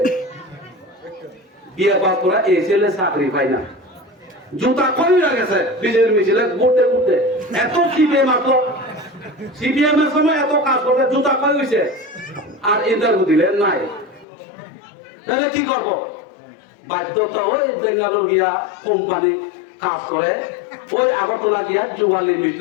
বিয়ে পাস করা এই ছেলে চাকরি পাই না। জুতা কইরা গেছে বিজেপির মিছিলে ঘুরতে ঘুরতে। এত সিপিএম আসলো, সিপিএম এর সময় এত কাজ করতে জুতা কই হইছে, আর ইন্টারভিউ দিলে নাই। তাহলে কি করব? বাধ্যতা ওই বেঙ্গালুরু গিয়া কোম্পানি কাজ করে, ওই আগরতলা গিয়া যুবালি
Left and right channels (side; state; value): right; drops out; at 14.2 s